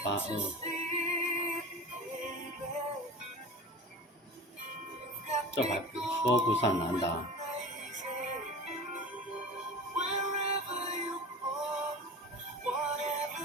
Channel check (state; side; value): normal; both; correlation 0.34